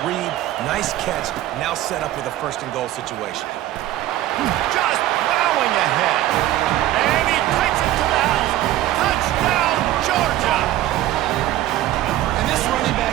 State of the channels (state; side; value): quieter; left; 14.3 dB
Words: read, nice catch. Now set up with a 1st and goal situation. Just plowing ahead. And he takes it to the house. Touchdown, Georgia. And this running